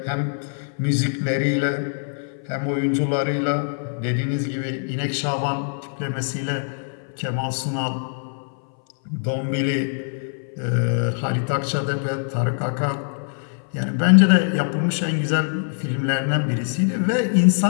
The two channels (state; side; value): silent; right; 58 dB below the other